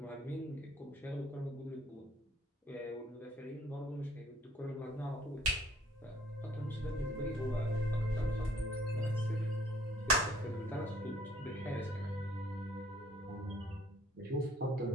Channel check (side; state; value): both; normal; correlation 0.60